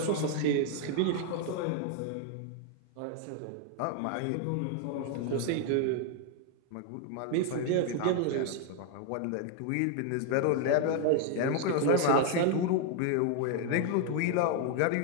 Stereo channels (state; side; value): different; both; correlation 0.00